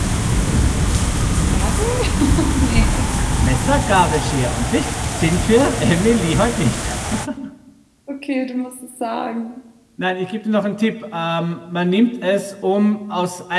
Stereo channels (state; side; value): identical; both; correlation 1.00